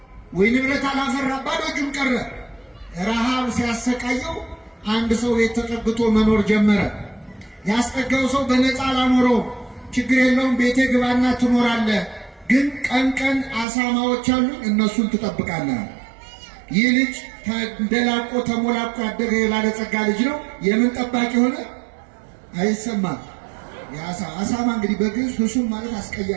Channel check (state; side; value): drops out; left; at 13.7 s